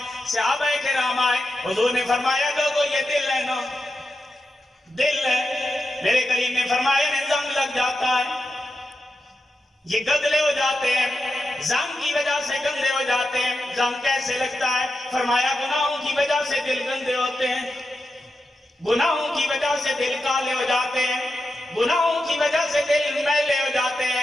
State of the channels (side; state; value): both; normal; correlation 0.89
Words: صحابہ کرام آئے. حضور نے فرمایا لوگوں یہ دل ہے نا، دل ہے. میرے کریم نے فرمایا میں زنگ لگ جاتا ہے، یہ گدلے ہو جاتے ہیں، زنگ کی وجہ سے گندے ہو جاتے ہیں. زنگ کیسے لگتا ہے؟ فرمایا گناہوں کی وجہ سے دل گندے ہوتے ہیں، گناہوں کی وجہ سے دل کالے ہو جاتے ہیں، گناہوں کی وجہ سے دل میلے ہو جاتے